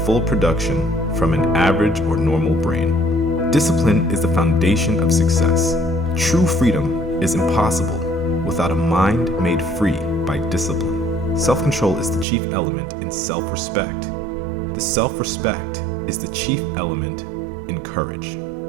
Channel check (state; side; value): drops out; left; at 12.2 s